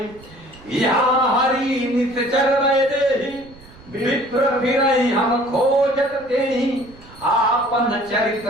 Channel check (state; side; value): noise; right; rumble, 22 dB below the sound